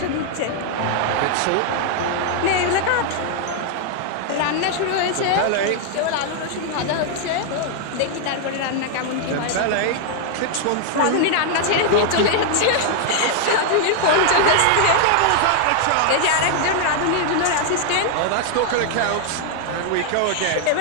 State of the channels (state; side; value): different; both; correlation 0.00